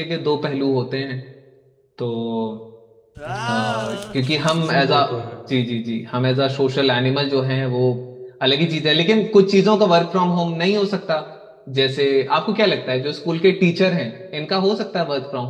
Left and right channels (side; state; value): both; identical; correlation 1.00